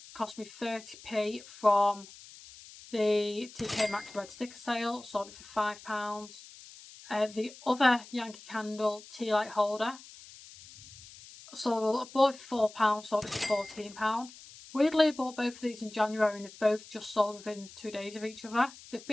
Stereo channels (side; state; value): left; noise; hiss, 19 dB below the sound